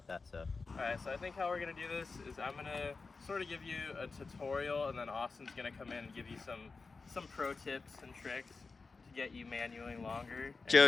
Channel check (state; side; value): quieter; right; 4.2 dB